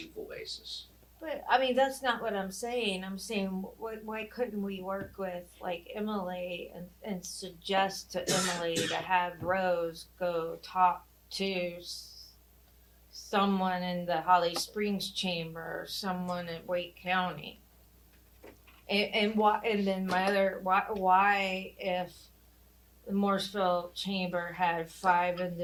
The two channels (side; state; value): both; identical; correlation 1.00